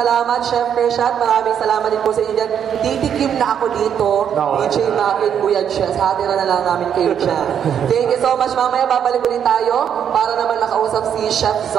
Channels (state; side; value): quieter; left; 8.6 dB